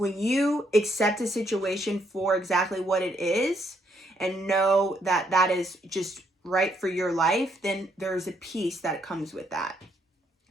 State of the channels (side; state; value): both; normal; correlation 0.73